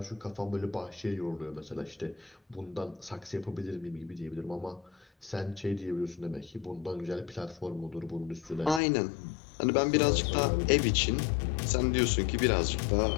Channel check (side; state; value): right; drops out; at 8.8 s